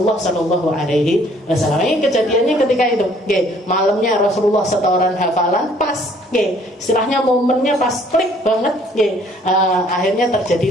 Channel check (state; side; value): normal; both; correlation 0.60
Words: Shallallahu Alaihi Wasallam. Ini kejadiannya ketika itu. Malamnya Rasulullah setoran hafalan pas. Istilahnya momennya pas klik banget. Akhirnya